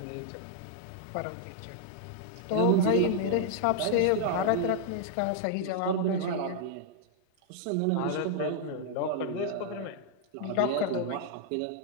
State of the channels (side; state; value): both; different; correlation -0.01